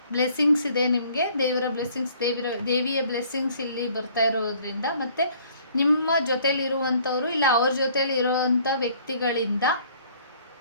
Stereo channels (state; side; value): inverted; both; correlation -0.58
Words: ಬ್ಲೆಸ್ಸಿಂಗ್ಸ್ ಇದೆ ನಿಮಗೆ, ದೇವರ ಬ್ಲೆಸ್ಸಿಂಗ್ಸ್, ದೇವಿಯ ಬ್ಲೆಸ್ಸಿಂಗ್ಸ್ ಇಲ್ಲಿ ಬರ್ತಾ ಇರೋದ್ರಿಂದ, ಮತ್ತು ನಿಮ್ಮ ಜೊತೆಲಿರುವಂಥವ್ರು ಇಲ್ಲ ಅವ್ರ ಜೊತೇಲಿ ಇರುವಂಥ ವ್ಯಕ್ತಿಗಳಿಂದ